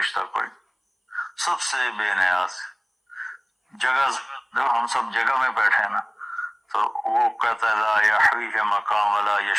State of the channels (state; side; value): identical; both; correlation 1.00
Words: کوئی نہیں، سب سے بے نیاز۔ جگہ جب ہم سب جگہ میں بیٹھے نا تو وہ کہتا ہے لا یحویہ مقام ولا